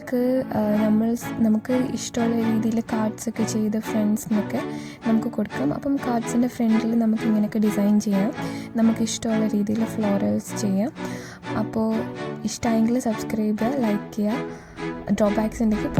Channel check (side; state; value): both; identical; correlation 1.00